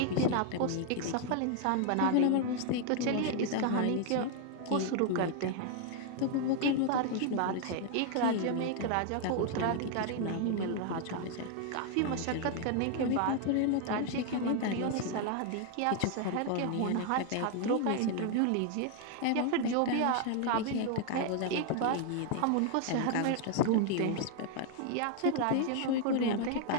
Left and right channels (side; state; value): both; different; correlation 0.00